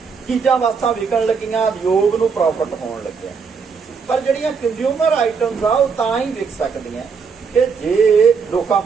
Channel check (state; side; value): quieter; left; 5.6 dB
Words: ਚੀਜ਼ਾਂ ਵਸਤਾਂ ਵਿਕਣ ਲੱਗੀਆਂ, ਉਦਯੋਗ ਨੂੰ ਪ੍ਰੋਫਿਟ ਹੋਣ ਲੱਗਿਆ। ਪਰ ਜਿਹੜੀਆਂ ਕੰਜ਼ਿਊਮਰ ਆਈਟਮਸ ਆ ਉਹ ਤਾਂ ਹੀ ਵਿਕ ਸਕਦੀਆਂ ਕਿ ਜੇ ਲੋਕਾਂ